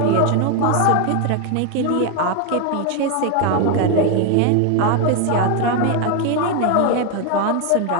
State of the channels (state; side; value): different; both; correlation 0.01